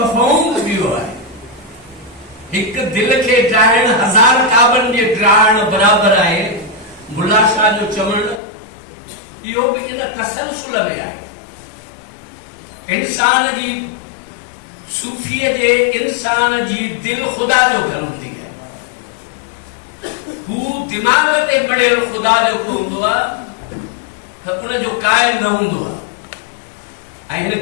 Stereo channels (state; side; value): drops out; right; at 8.4 s